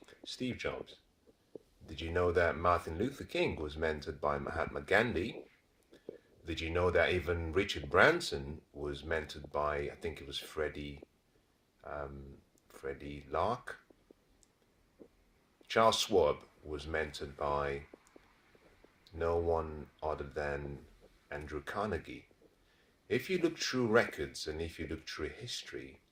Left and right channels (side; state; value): both; identical; correlation 1.00